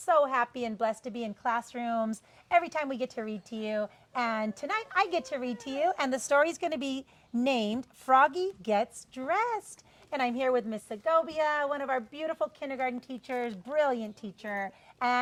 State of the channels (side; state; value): both; identical; correlation 1.00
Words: happy and blessed to be in classrooms every time we get to read to you. And tonight I get to read to you, and the story is going to be named Froggy Gets Dressed. And I'm here with Miss Segovia, one of our beautiful kindergarten teachers, brilliant teacher,